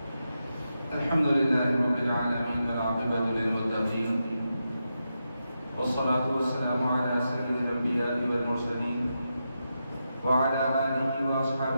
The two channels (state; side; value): inverted; both; correlation -0.87